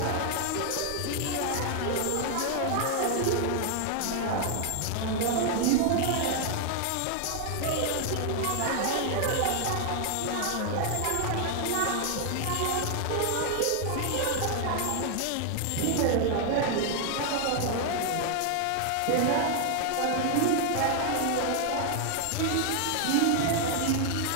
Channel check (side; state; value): both; different; correlation 0.00